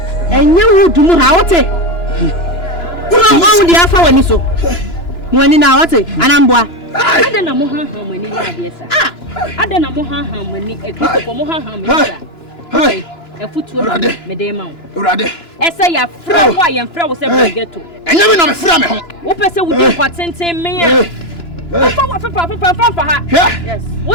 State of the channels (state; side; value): late; right; 2.9 ms